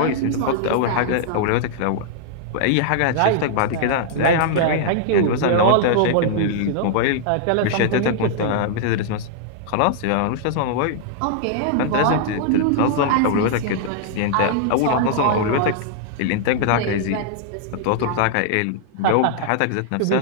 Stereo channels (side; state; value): both; different; correlation -0.01